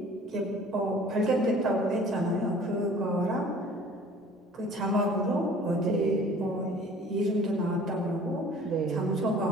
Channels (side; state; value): both; normal; correlation 0.49